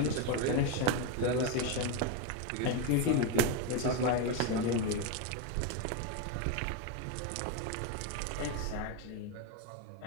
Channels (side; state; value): both; different; correlation 0.03